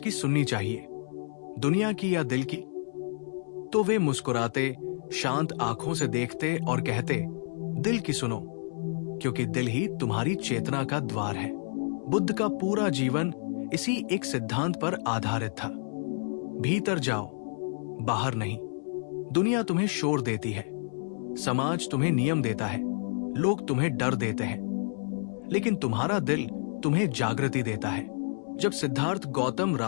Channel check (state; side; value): silent; right; 58 dB below the other